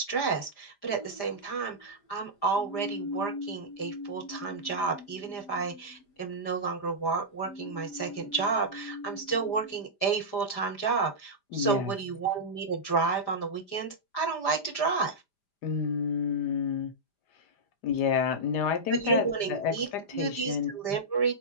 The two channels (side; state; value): right; late; 5.0 ms